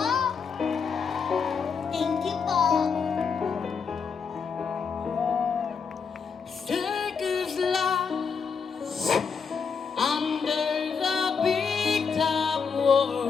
Thank you po. Circus life under the big top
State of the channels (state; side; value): quieter; right; 5.8 dB